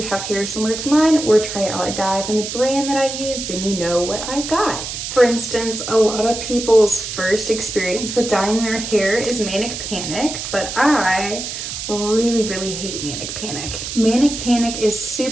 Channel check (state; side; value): noise; right; hiss, 6 dB below the sound